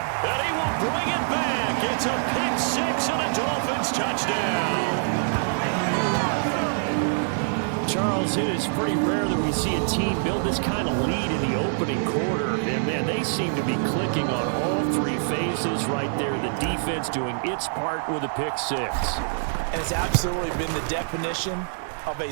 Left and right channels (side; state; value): left; silent; digital silence